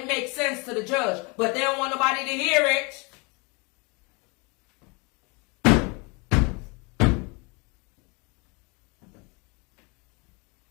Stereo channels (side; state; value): right; quieter; 29.9 dB